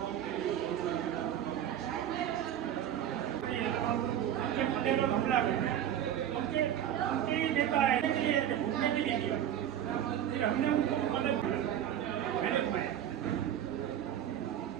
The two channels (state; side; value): quieter; left; 10.4 dB